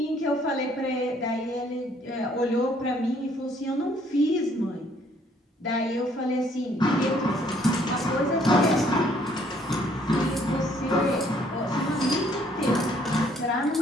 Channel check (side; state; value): both; normal; correlation 0.64